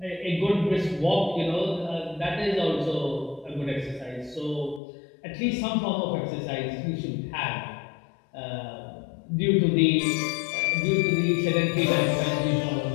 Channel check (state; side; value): drops out; right; at 4.8 s